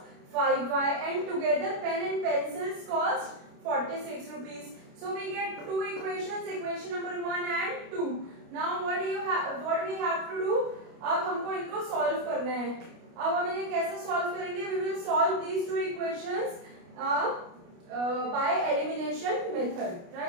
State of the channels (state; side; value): late; left; 29 ms